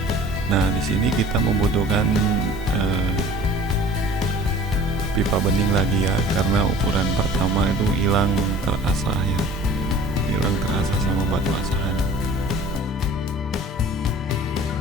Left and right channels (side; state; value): both; normal; correlation 0.46